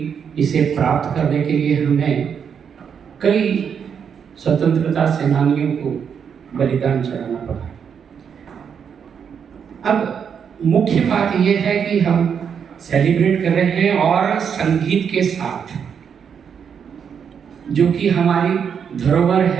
इसे प्राप्त करने के लिए हमें कई स्वतंत्रता सेनानियों को बलिदान चढ़ाना पड़ा। अब मुख्य बात यह है कि हम सेलिब्रेट कर रहे हैं और संगीत के साथ, जो कि हमारी धरोहर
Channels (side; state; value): left; quieter; 7.3 dB